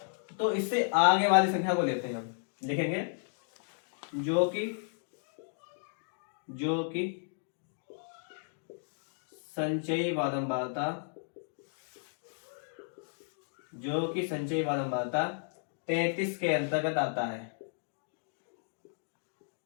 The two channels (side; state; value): right; silent; digital silence